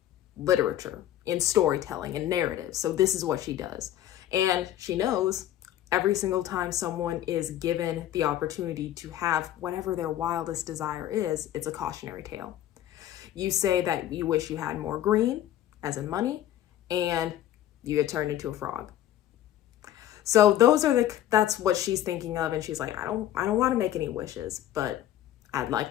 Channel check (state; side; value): quieter; right; 12.3 dB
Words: literature, in storytelling, and narrative. So this is what she does. And she knows every single time someone is given the opportunity to have whatever their wildest desire is, it's a cautionary tale. You say that you wish you had more green, as in money, and you get turned into a frog. So that's what she's thinking of. And she's like, I don't want to make any wishes, but I'd